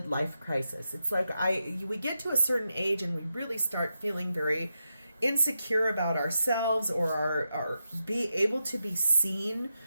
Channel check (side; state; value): both; inverted; correlation -0.87